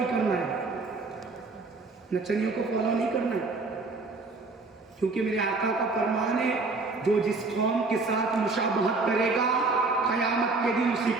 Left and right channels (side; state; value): left; quieter; 3.7 dB